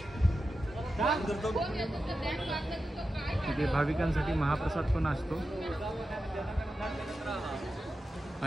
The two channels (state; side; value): normal; both; correlation 0.91